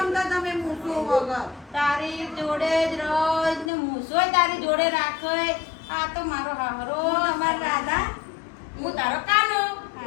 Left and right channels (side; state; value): right; drops out; at 3.7 s